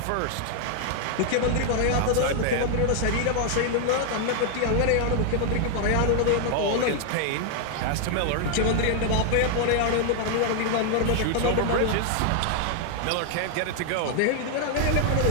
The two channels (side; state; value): both; different; correlation 0.00